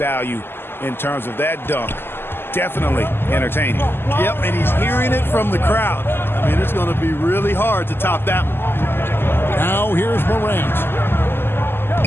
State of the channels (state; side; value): late; right; 0.11 ms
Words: in terms of that dunk. Definitely entertaining. Yep, and he's hearing it from the crowd. I mean, it's going to be really hard to top that one. Now here's Morant.